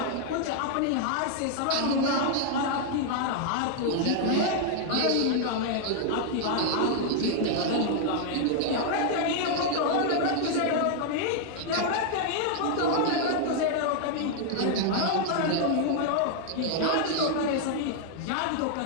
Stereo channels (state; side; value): different; both; correlation 0.00